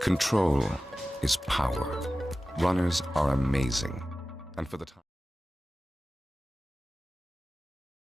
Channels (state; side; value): normal; both; correlation 0.96